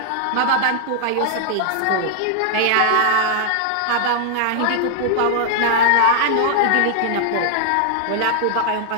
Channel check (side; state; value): both; different; correlation -0.01